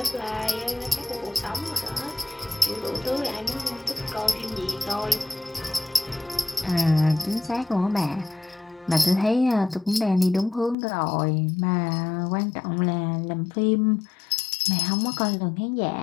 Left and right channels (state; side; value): drops out; right; at 10.8 s